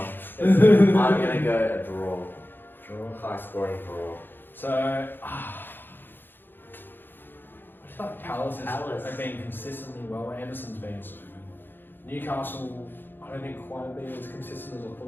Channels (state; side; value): late; right; 0.097 ms